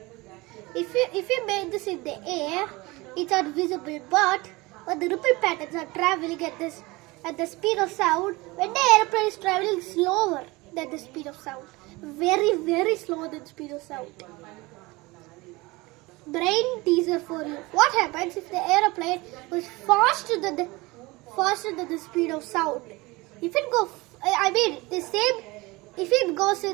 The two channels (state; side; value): quieter; left; 22.8 dB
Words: you make this in the air, it's not visible. But when the ripple patterns are traveling at the speed of sound, when the airplane is traveling slower than the speed of sound, very slower than the speed of sound. Brain teaser for you. What happens if the airplane was faster than the speed of sound? If it goes, if it goes